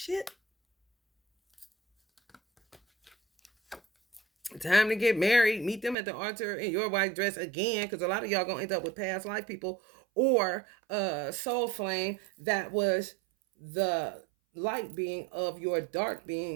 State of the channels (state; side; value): drops out; left; at 6.0 s